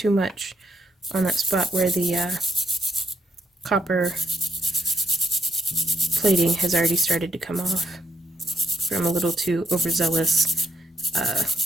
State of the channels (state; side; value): normal; both; correlation 0.75